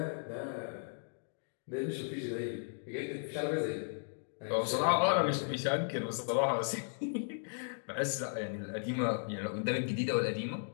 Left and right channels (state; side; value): silent; right; digital silence